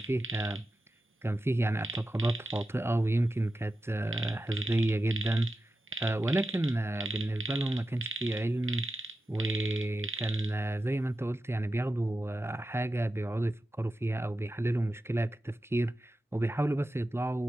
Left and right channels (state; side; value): normal; both; correlation 0.92